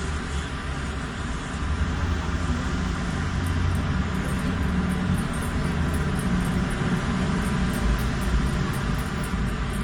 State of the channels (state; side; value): identical; both; correlation 1.00